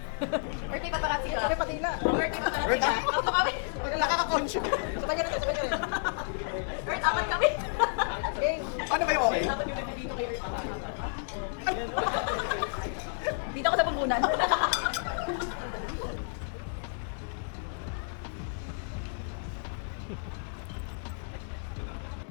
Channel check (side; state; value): right; silent; digital silence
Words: Birthday pa parati sila. Kami patila. Birthday pa parati sila. Tatlo kami. Nakaka-conscious. Sabay ka na, sabay ka na. Earth, apat kami. Okay. Ano ba yung okay? Apat yung nandito kay Earth. Dito ako sa pambunan.